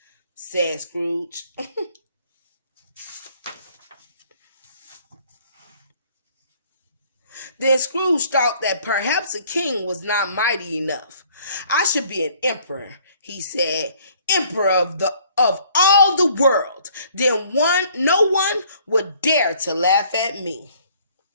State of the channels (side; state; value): both; inverted; correlation -0.59